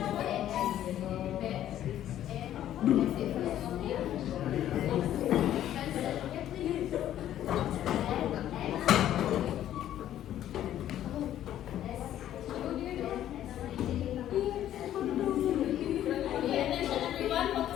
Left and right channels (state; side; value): quieter; right; 11.8 dB